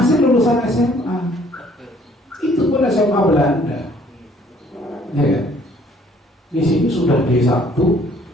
lulusan SMA, itu pun SMA Belanda, ya kan? Di sini sudah D1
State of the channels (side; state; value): both; normal; correlation 0.60